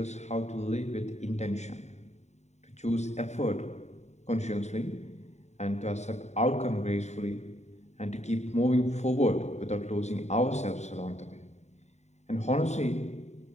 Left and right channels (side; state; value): right; late; 0.32 ms